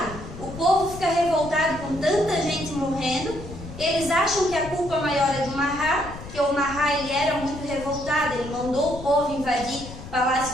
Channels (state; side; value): noise; left; rumble, 13 dB below the sound